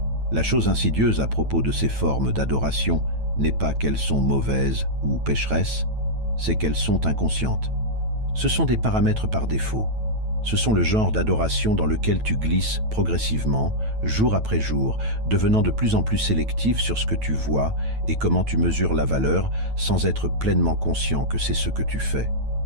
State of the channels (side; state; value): left; late; 9.1 ms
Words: La chose insidieuse à propos de ces formes d'adoration n'est pas qu'elles sont mauvaises ou pécheresses, c'est qu'elles sont inconscientes. Ce sont des paramètres par défaut. Ce sont le genre d'adoration dans lequel tu glisses progressivement, jour après jour, devenant de plus en plus sélectif sur ce que tu vois et comment tu mesures la valeur sans être pleinement conscient que c'est ce que tu fais.